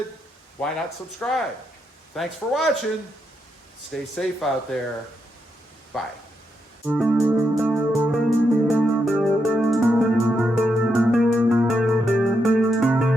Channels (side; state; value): both; normal; correlation 0.81